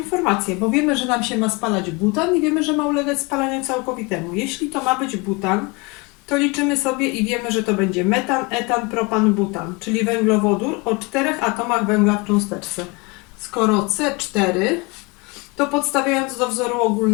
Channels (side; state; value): right; quieter; 27.4 dB